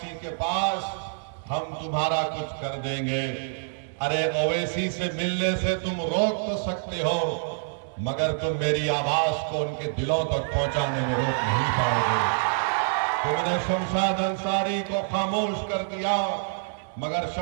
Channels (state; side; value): silent; left; 61 dB below the other